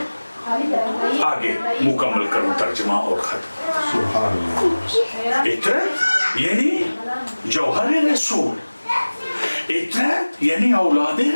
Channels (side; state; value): both; inverted; correlation -1.00